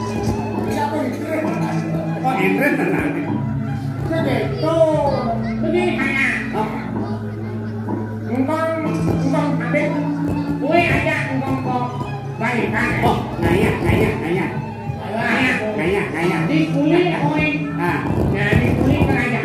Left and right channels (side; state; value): both; identical; correlation 1.00